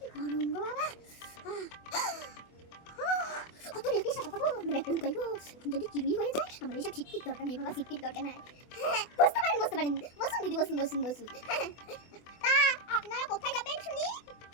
গরম গো বাবা। কত রেখে সাথে পাবো মানে ব্যাগটা লুকাই গো, যদি চুরি হয়ে যায় আমার এইসব সিটটির দরকার নেই বাবা, সিটটির দরকার নাই। হ্যাঁ বসতে পারেন বসুন দিদি, বসুন। তা আপনারা কোথায় যাবেন শুনি?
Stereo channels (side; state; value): right; late; 24 ms